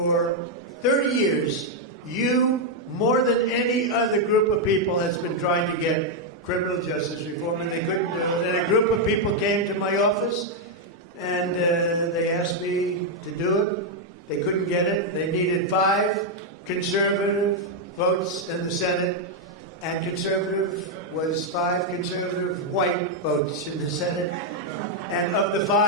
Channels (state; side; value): normal; both; correlation -0.01